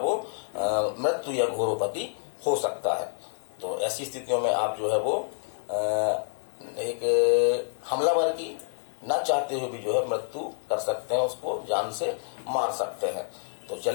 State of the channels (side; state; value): right; silent; 59 dB below the other